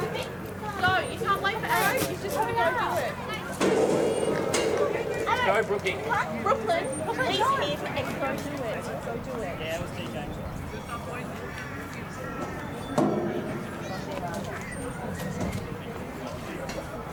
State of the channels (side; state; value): both; identical; correlation 1.00